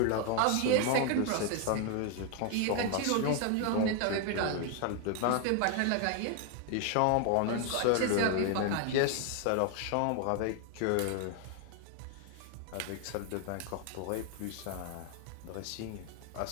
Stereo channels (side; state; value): both; different; correlation 0.01